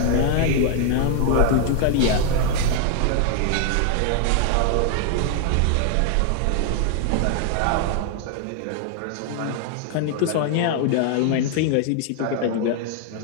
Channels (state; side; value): different; both; correlation 0.00